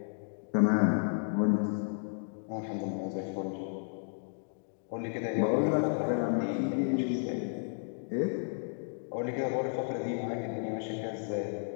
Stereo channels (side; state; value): right; silent; digital silence